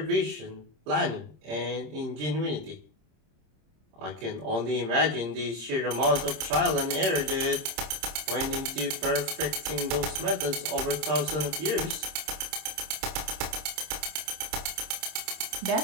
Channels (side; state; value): left; late; 26 ms